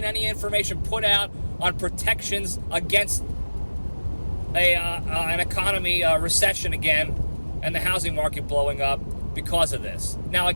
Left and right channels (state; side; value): inverted; both; correlation -1.00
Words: any information put out on protections against an economy recession again and the housing market blowing up because of this. Now,